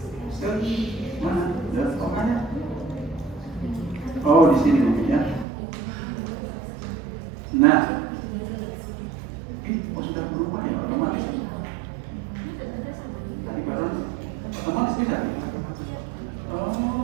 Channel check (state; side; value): drops out; left; at 5.5 s